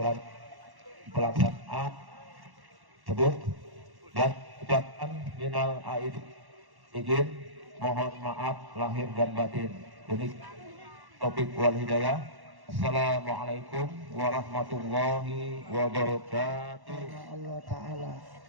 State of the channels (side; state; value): left; late; 1.1 ms